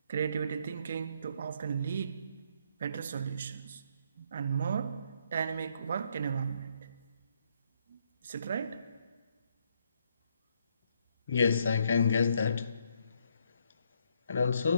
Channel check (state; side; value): inverted; both; correlation -0.72